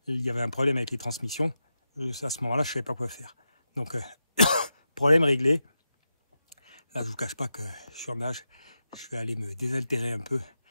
y avait un problème avec les transmissions, à ce moment-là, je ne savais pas quoi faire. Donc, problème réglé. Là, je vous cache pas que je suis en nage. Je vais aller me désaltérer un peu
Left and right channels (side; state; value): both; inverted; correlation -0.88